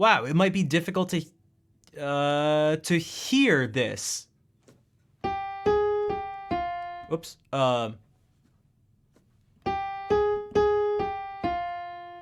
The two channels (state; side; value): identical; both; correlation 1.00